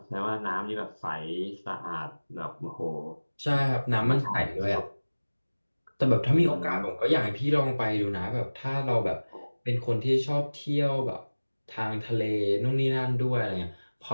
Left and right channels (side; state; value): both; inverted; correlation -1.00